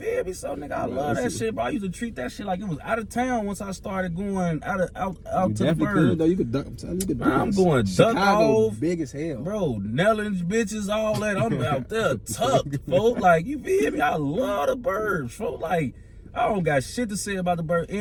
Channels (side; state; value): both; identical; correlation 1.00